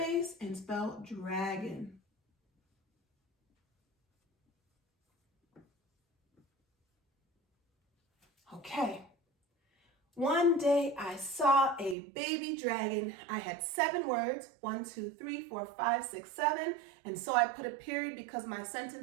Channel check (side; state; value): left; drops out; at 12.0 s